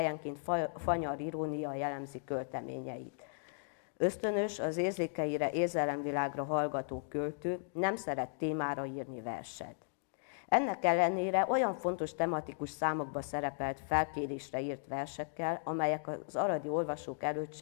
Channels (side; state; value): right; silent; digital silence